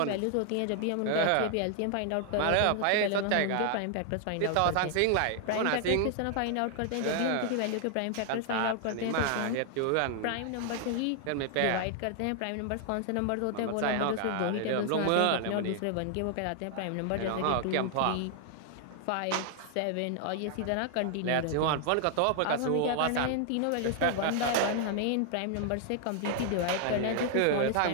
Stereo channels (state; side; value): different; both; correlation 0.00